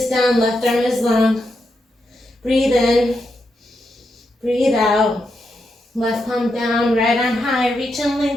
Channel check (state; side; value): normal; both; correlation 0.84